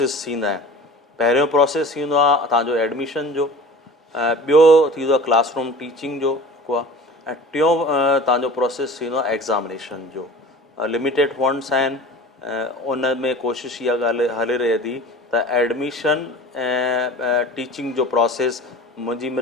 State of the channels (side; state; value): both; normal; correlation 0.40